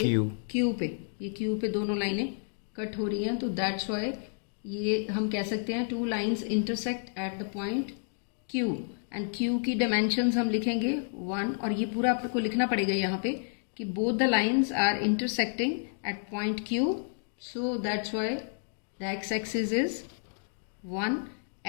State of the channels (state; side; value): silent; right; digital silence